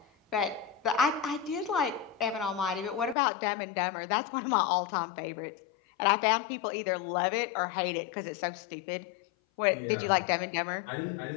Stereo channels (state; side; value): drops out; right; at 3.2 s